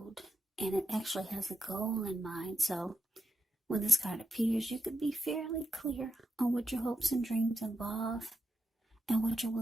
and it actually has a goal in mind. So when this card appears, you could be fairly clear on what your hopes and dreams involve and what you're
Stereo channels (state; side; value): normal; both; correlation 0.84